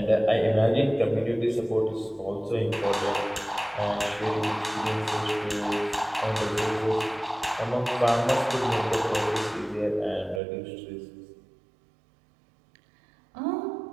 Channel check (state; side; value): drops out; left; at 10.4 s